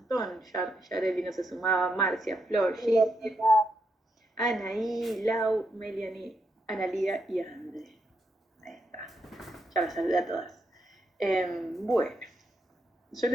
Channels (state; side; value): normal; both; correlation 0.81